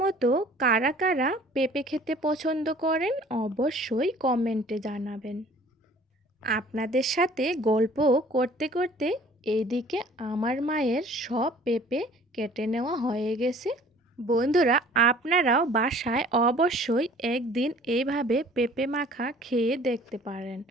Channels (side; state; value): both; normal; correlation 0.51